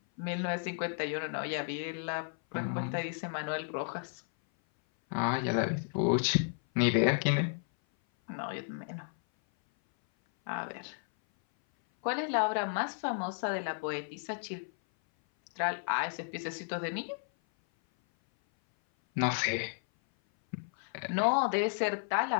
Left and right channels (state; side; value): silent; right; 56 dB below the other